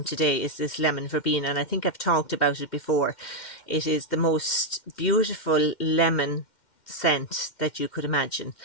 today is this lemon verbena, and I think I've talked about it before. It is the most beautiful lemon scent that you could imagine,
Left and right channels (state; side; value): late; right; 2.1 ms